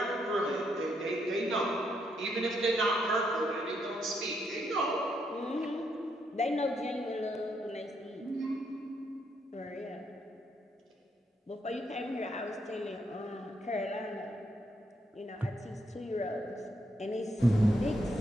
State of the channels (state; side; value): normal; both; correlation 0.77